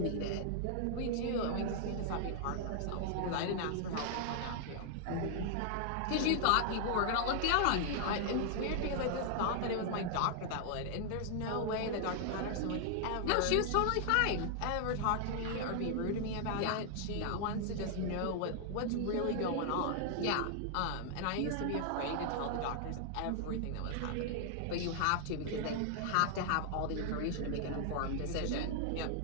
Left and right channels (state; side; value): different; both; correlation -0.01